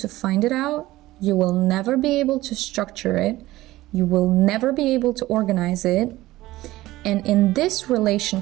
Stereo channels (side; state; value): left; quieter; 17.2 dB